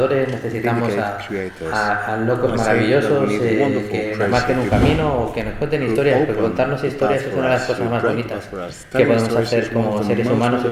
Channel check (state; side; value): identical; both; correlation 1.00